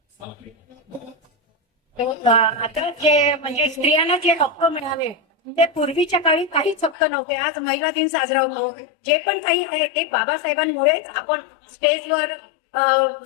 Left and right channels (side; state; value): right; drops out; at 7.0 s